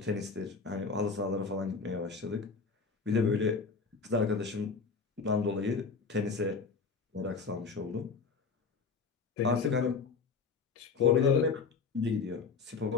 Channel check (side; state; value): right; quieter; 5.0 dB